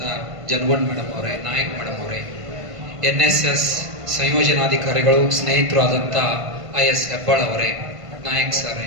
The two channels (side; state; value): left; late; 1.5 ms